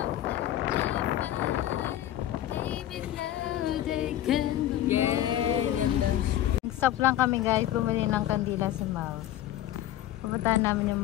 Stop lang kami guys, bumili ng kandila sa Mouse. Pupuntahan namin yung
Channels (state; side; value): quieter; right; 13.0 dB